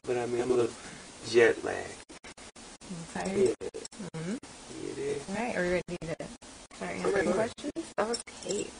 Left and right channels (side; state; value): both; identical; correlation 1.00